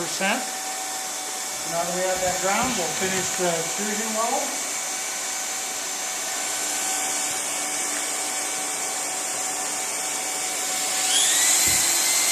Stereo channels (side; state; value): both; identical; correlation 1.00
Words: Now that we have that ground, we'll finish the extrusion weld.